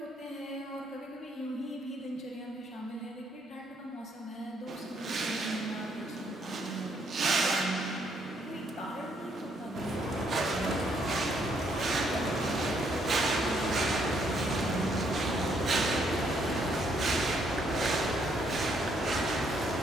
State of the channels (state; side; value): normal; both; correlation 0.71